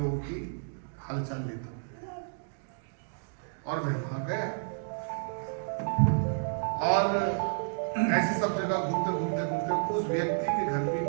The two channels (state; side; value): silent; left; digital silence